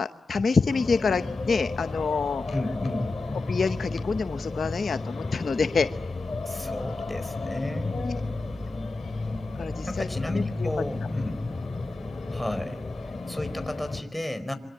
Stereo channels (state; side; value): quieter; right; 3.4 dB